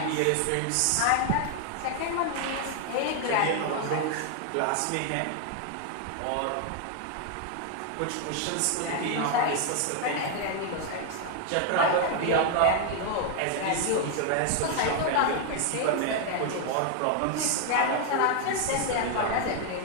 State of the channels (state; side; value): different; both; correlation 0.00